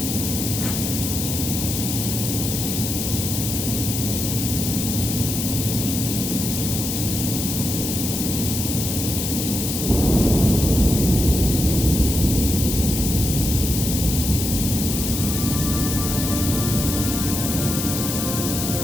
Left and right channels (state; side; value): noise; left; hiss, 3 dB below the sound